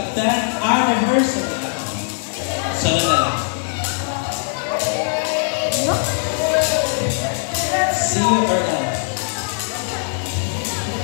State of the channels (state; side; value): silent; right; 65 dB below the other